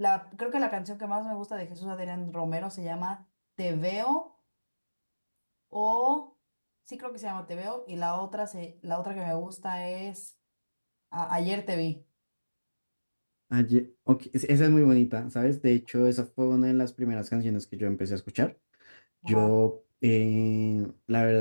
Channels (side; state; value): both; inverted; correlation -1.00